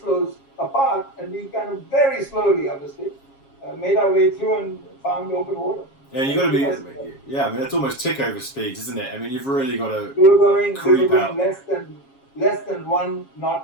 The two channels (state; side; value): late; right; 7.3 ms